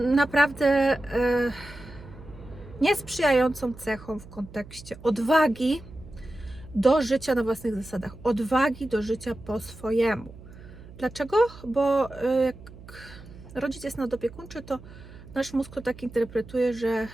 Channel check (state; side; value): noise; right; hum, 18 dB below the sound